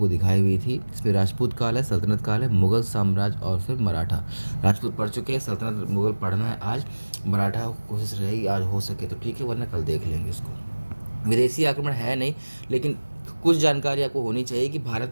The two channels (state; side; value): inverted; both; correlation -1.00